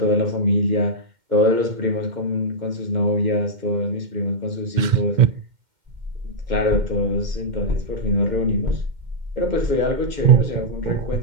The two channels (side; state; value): left; late; 2.1 ms